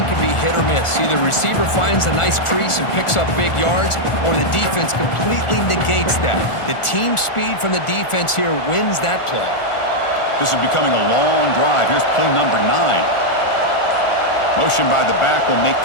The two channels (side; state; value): right; late; 1.4 ms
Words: can be hit or miss. Either receiver finds a nice crease and picks up big yards, or the defense completely negates that. The team speed from the defense here wins that play. This is becoming a long drive. Here's play number 9. Motion by the back will make